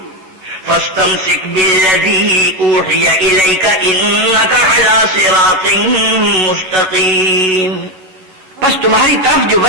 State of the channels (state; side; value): late; left; 11 ms